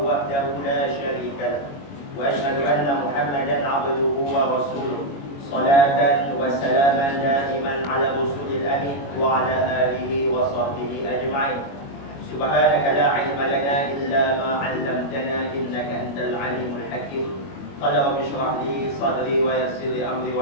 وحده لا شريك له وأشهد أن محمدا عبده ورسوله صلاة وسلاما دائما على الرسول الأمين وعلى آله وصحبه أجمعين. سبحانك لا علم لنا إلا ما علمتنا إنك أنت العليم الحكيم. قال رب اشرح لي صدري ويسر لي أمري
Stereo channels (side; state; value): right; late; 22 ms